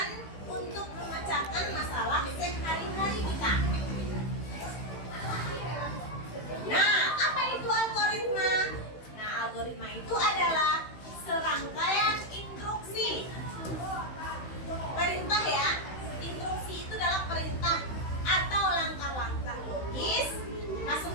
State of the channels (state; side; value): late; right; 16 ms